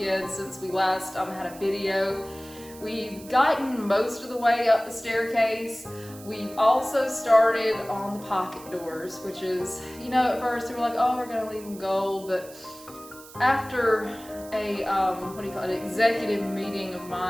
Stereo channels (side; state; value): right; noise; hiss, 19 dB below the sound